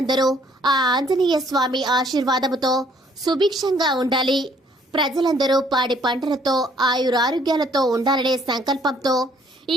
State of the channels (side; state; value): both; normal; correlation 0.62